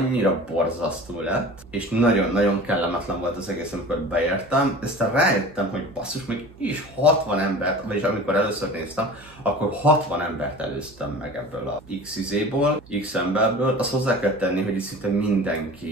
borzasztó lett, és nagyon-nagyon kellemetlen volt az egész, amikor beértem, aztán rájöttem, hogy basszus, még is 60 embert, vagyis amikor először néztem, akkor 60 embert előztem meg ebből a X-izéból, X-emberből. Azt hozzá kell tenni, hogy itt szinte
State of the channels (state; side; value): noise; right; hum, 24 dB below the sound